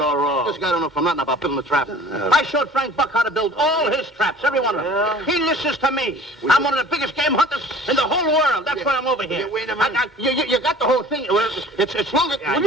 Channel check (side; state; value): both; normal; correlation 0.47